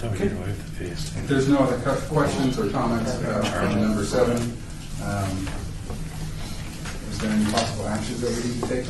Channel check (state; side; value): identical; both; correlation 1.00